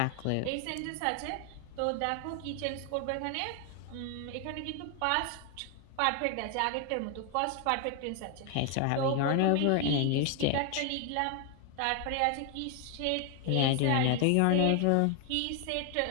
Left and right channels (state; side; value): different; both; correlation 0.00